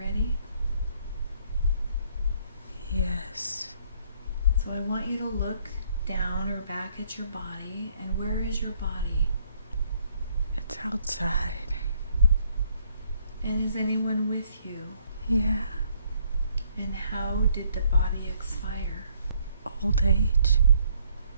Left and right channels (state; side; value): inverted; both; correlation -0.66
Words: Yes. So I want you to look down or back at your body, and where is your body? It's outside. And is anyone with you? Yeah. And how did the body expire? Old age.